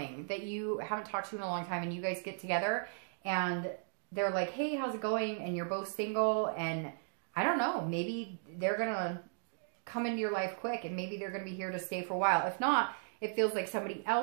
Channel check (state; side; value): silent; left; digital silence